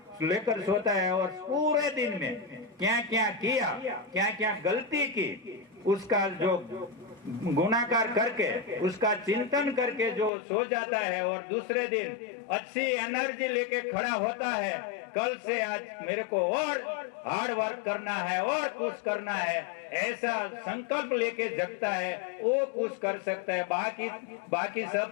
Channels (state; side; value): drops out; right; at 10.3 s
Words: लेकर सोता है और पूरे दिन में क्या क्या किया, क्या क्या गलती की, उसका जो गुणाकार करके उसका चिंतन करके जो सो जाता है और दूसरे दिन अच्छी एनर्जी लेके खड़ा होता है, कल से आज मेरे को और हार्ड वर्क करना है और कुछ करना है, ऐसा संकल्प लेके जगता है, वो कुछ कर सकता है। बाकी